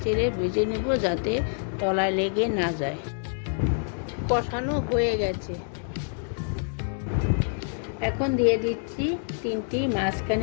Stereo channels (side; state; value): right; silent; digital silence